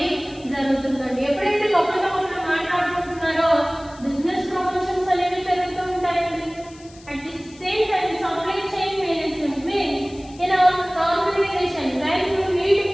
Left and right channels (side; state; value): left; noise; hiss, 24 dB below the sound